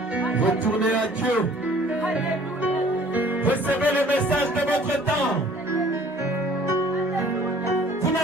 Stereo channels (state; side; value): normal; both; correlation 0.53